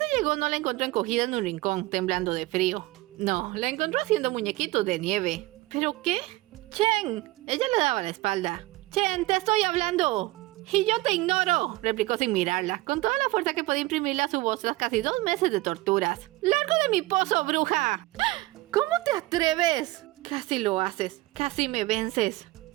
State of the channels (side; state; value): left; quieter; 19.5 dB